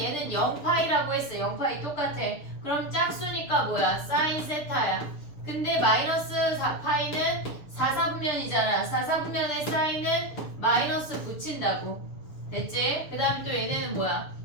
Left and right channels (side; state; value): right; late; 6.7 ms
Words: 0파이라고 했어. 0파이 똑같아. 그럼 짝수니까 뭐야? 사인 세타야. 근데 마이너스 4파이는 4, 4분면이잖아. 4, 4분면의 사인은 마이너스 붙인다고. 됐지? 그 다음에 또 얘네는 뭐야?